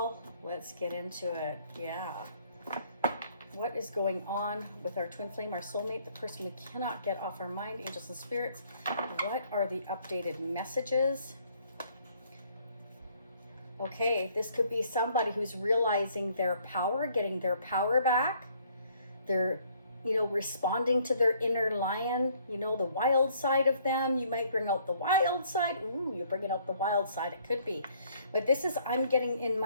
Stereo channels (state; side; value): inverted; both; correlation -0.63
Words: Let's get into it. Yeah. What is going on with our twin flame, our soulmate, the person we cannot get off our mind, angels and spirits? What are the updated messages? Okay, this could be somebody who's realizing their power, getting their power back. They're, responding to their inner lion, the wild side of them. You might bring out the wild side. Ooh, you're bringing out the wild side. It could be. But this is, I'm getting in